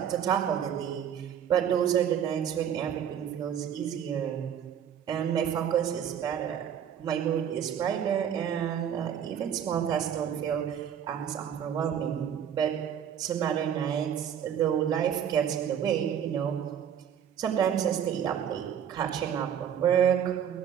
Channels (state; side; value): quieter; left; 9.0 dB